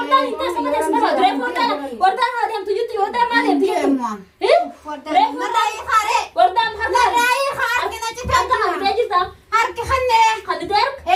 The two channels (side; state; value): both; identical; correlation 1.00